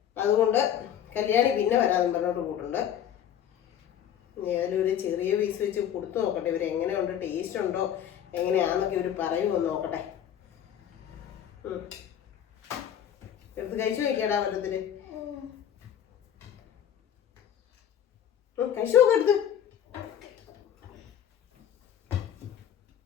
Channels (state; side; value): quieter; right; 9.8 dB